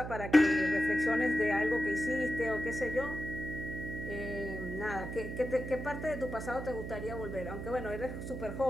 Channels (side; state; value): right; noise; hum, 6 dB below the sound